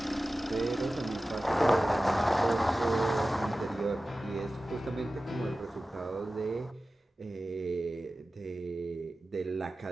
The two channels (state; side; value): normal; both; correlation 0.95